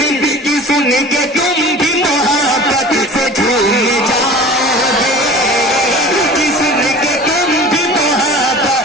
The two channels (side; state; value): both; normal; correlation 0.41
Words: कि सुन के तुम भी मोहब्बत से झूम जाओगे, कि सुन के तुम भी मोहब्बत